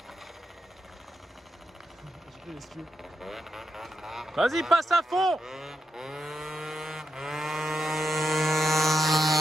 Vas-y, passe à fond.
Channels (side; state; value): both; normal; correlation 0.85